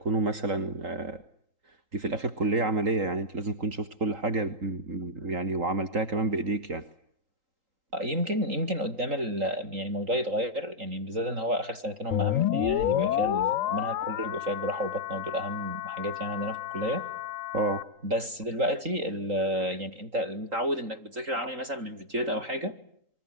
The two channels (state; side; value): late; left; 3.8 ms